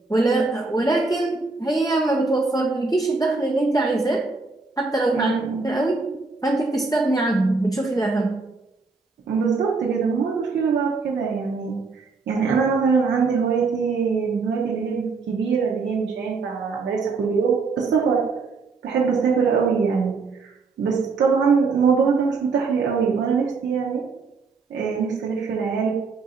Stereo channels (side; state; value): left; quieter; 4.3 dB